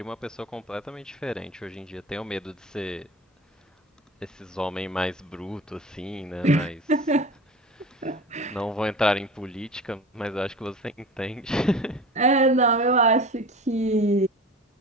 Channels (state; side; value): normal; both; correlation 0.36